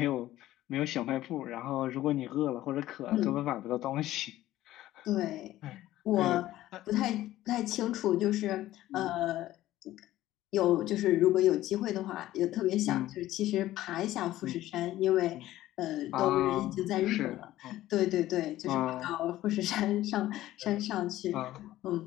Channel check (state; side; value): quieter; right; 14.8 dB